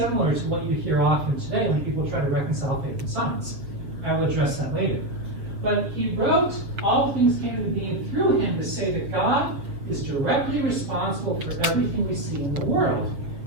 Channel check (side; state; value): left; late; 6.7 ms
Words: to what you hear often today when people try to reconcile faith and science. I will address that later. But he wrote, all things came into being through him, to say that God is directly responsible for everything we see in the world.